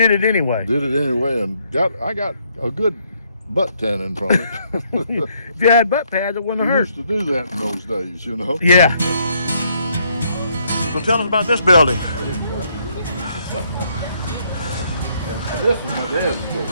it anyway. did it anyway, and I got a good butt tanning from it. If you had butt pads, it wouldn't We have used hurt. to do that in those days, you know. Yeah. So tell us about this building. And this is my dad's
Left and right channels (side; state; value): both; inverted; correlation -0.71